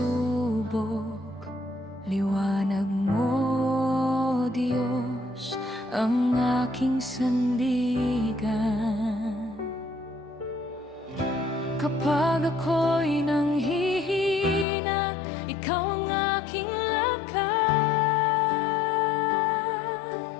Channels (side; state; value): right; drops out; at 14.7 s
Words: liwanag mo, Diyos, ang aking sandigan. Kapag ako'y nanghihina, ikaw ang aking lakas.